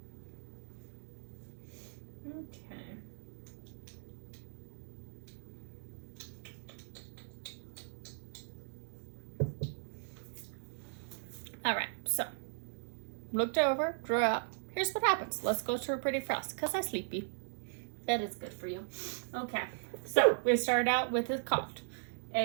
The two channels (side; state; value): left; silent; 52 dB below the other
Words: Okay. All right, so looked over, drew up. Here's what happens. Let's go to a pretty frost because I'm sleepy. That is good for you. Okay, so we started out with his cocked.